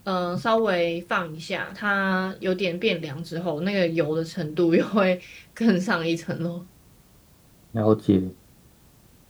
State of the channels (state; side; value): identical; both; correlation 1.00